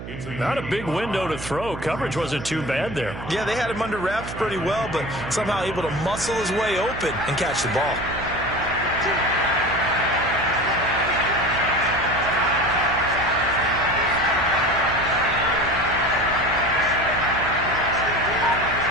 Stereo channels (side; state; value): right; noise; hum, 10 dB below the sound